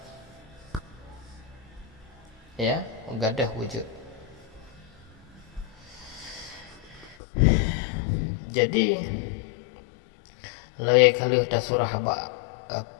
ya gadah wujud. Jadi lagi kali dah surah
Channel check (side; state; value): right; drops out; at 7.2 s